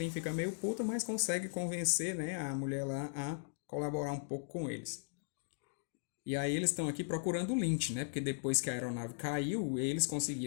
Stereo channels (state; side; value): silent; right; digital silence